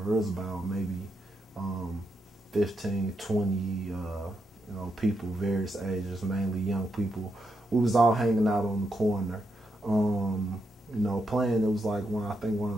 It was about maybe 15, 20, people, various ages, mainly young people. We was all hanging out on the corner, playing. It was like I think one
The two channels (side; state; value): both; normal; correlation 0.82